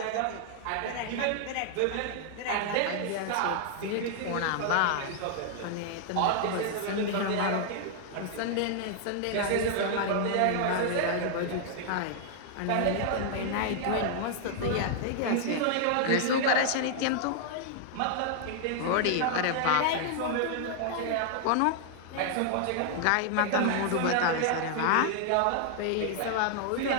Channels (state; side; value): different; both; correlation 0.00